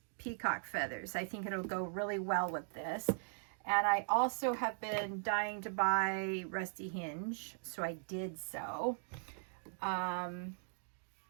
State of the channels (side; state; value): left; silent; digital silence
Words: peacock feathers. I think it'll go really well with this. And I also have been dying to buy Rusty Hinge, so I did so.